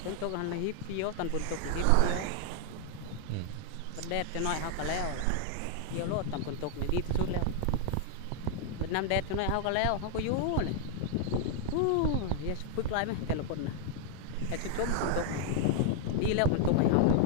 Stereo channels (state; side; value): different; both; correlation 0.00